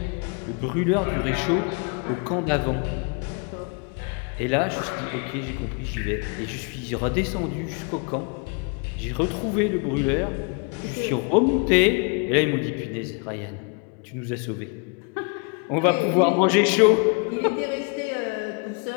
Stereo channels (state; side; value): quieter; right; 34.5 dB